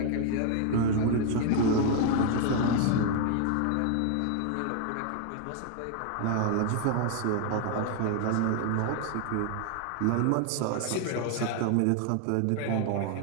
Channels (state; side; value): different; both; correlation 0.00